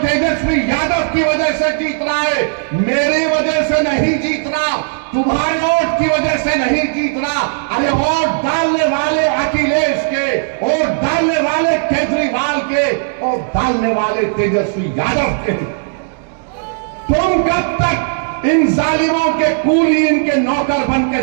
यादव की वजह से जीत रहा है। मेरी वजह से नहीं जीत रहा, तुम्हारे वोट की वजह से नहीं जीत रहा। अरे वोट डालने वाले अखिलेश के, वोट डालने वाले केजरीवाल के, वोट डालने वाले तेजस्वी यादव के। तुम कब तक इन जालिमों के कूली, इनके नौकर बन के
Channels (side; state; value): left; silent; digital silence